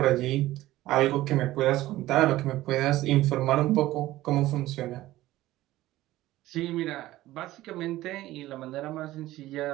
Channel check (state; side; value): quieter; left; 16.1 dB